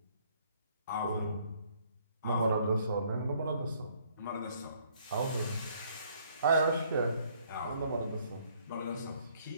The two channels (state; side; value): inverted; both; correlation -0.64